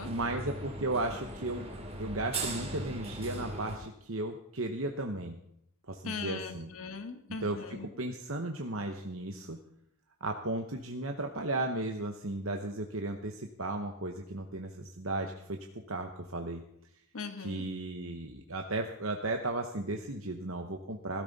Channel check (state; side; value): normal; both; correlation 0.04